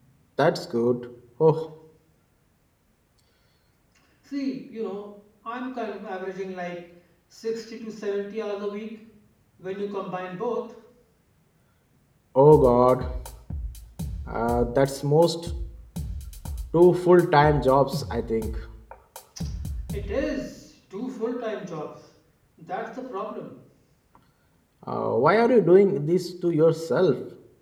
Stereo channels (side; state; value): both; identical; correlation 1.00